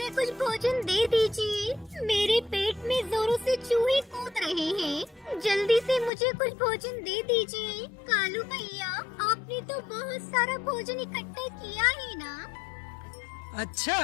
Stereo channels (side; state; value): right; drops out; at 6.1 s